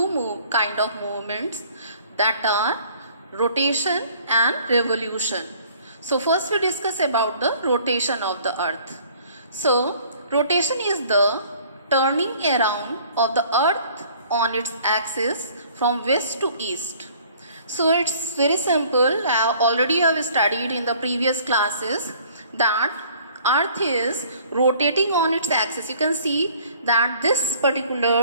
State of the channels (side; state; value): both; inverted; correlation -0.55